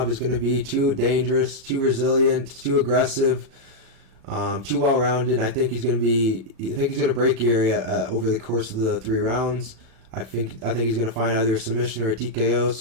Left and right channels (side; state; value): left; late; 36 ms